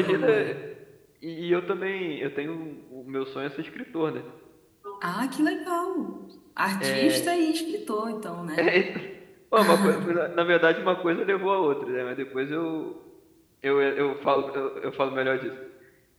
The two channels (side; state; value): both; identical; correlation 1.00